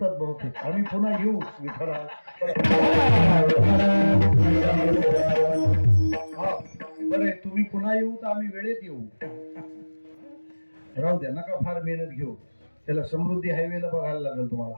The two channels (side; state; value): both; inverted; correlation -1.00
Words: बहुतेक, आम्ही पुन्हा येऊ. विठ्ठला, बरं तुम्ही पुन्हा येऊ तर आम्ही वेळेत येऊ. राहू द्या, नका फार मेहनत घेऊ. त्याला समृद्धी हायवेला बघायला लागेल